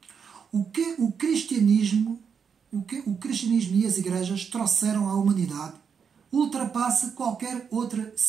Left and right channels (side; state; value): left; quieter; 6.6 dB